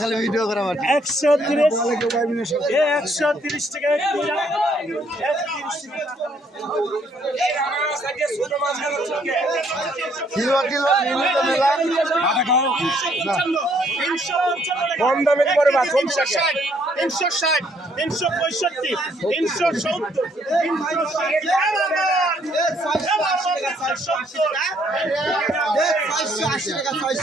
খালি ভিডিও করা মাটি 130 130 টাকা কিলো নিয়মিত মেলা কম দামে করে বা 360 360 365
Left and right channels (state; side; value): normal; both; correlation 0.67